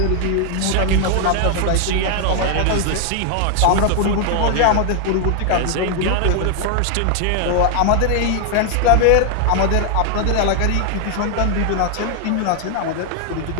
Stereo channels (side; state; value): both; different; correlation 0.00